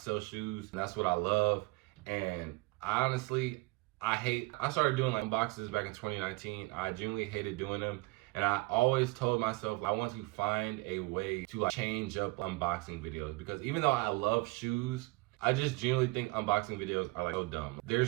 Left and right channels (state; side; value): quieter; left; 23.9 dB